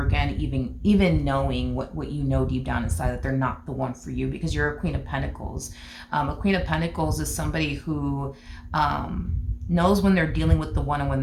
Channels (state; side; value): identical; both; correlation 1.00